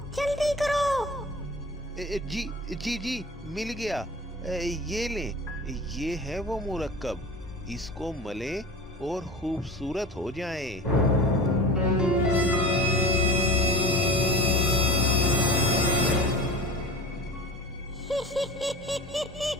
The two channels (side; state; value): both; normal; correlation 0.33